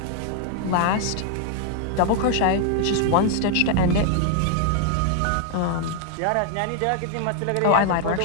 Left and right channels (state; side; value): different; both; correlation 0.00